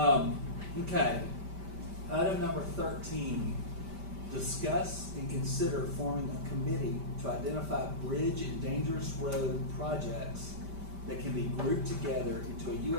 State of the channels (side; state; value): left; late; 5.1 ms